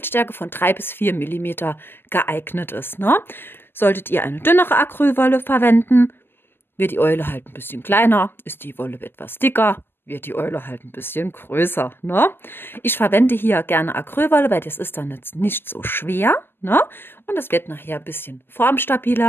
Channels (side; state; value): right; late; 0.10 ms